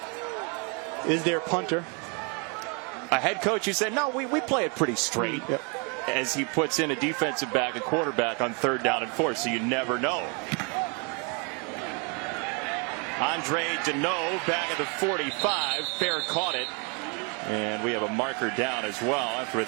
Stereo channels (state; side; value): quieter; left; 34.3 dB